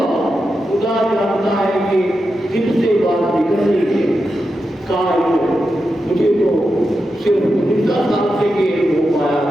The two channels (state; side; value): normal; both; correlation 0.89